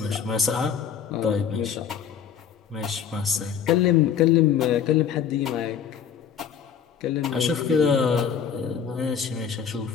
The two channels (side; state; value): right; quieter; 7.9 dB